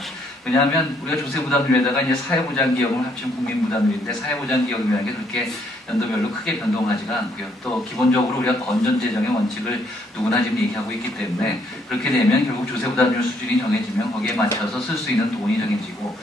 왜냐하면 우리가 조세부담률에다가 이제 사회보장기여금을 합치면 국민부담률인데 사회보장기여금이라는 게 그렇게 연도별로 크게 변동하지가 않고요. 또 기본적으로 우리가 건전재정의 원칙을 누구나 지금 얘기하고 있기 때문에 그렇게 되면 결국 조세부담률 수준이 정해지면 거기에 맞춰서 쓸 수 있는 돈이 정해지고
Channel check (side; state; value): both; normal; correlation 0.69